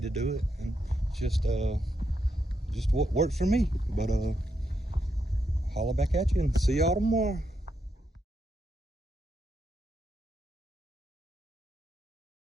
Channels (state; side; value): normal; both; correlation 0.82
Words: do it, and just what works for me. But holla back at you and see y'all tomorrow.